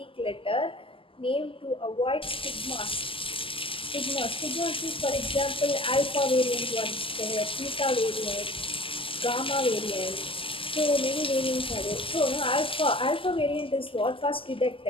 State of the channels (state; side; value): late; right; 0.26 ms